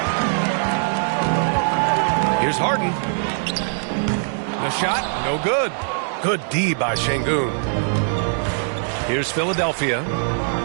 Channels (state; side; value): silent; left; digital silence